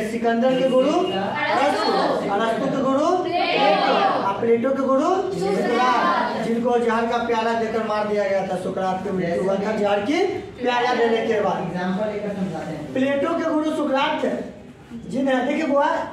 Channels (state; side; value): identical; both; correlation 1.00